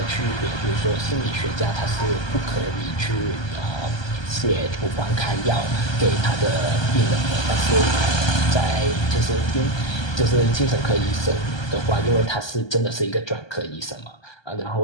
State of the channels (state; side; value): late; right; 1.3 ms